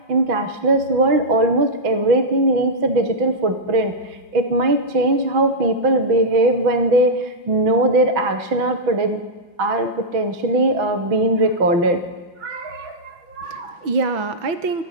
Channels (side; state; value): left; late; 6.1 ms